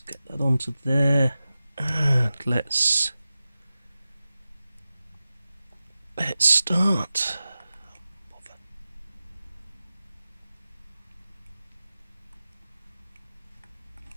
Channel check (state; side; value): inverted; both; correlation -0.95